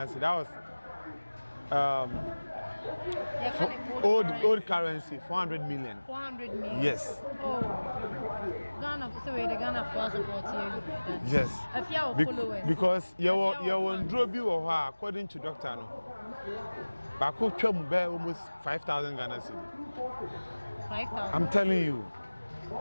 cedi. That was old currency 400 million. 400 million. Yes. Oh. Ghana, so the Ghana for support here. Yes. Efya will follow us. Because you won drop you or her according to doctor no. Bako twam be almost 5,000 Ghana cedi. 5,000. I'm telling you.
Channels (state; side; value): inverted; both; correlation -1.00